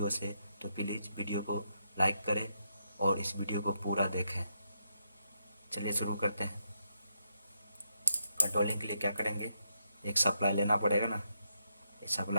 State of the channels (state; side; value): inverted; both; correlation -0.80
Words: से, तो प्लीज़ वीडियो को लाइक करें और इस वीडियो को पूरा देखें। चलिए शुरू करते हैं। कंट्रोलिंग के लिए क्या करेंगे, एक सप्लाई लेना पड़ेगा ना। एक